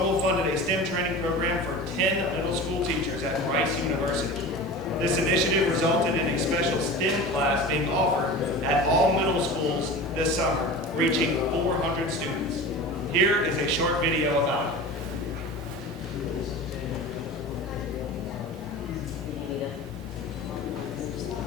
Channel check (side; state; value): both; normal; correlation 0.34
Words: funded a STEM training program for 10 middle school teachers at Rice University. This initiative resulted in a special STEM class being offered at all middle schools this summer, reaching 400 students. Here is a short video about it.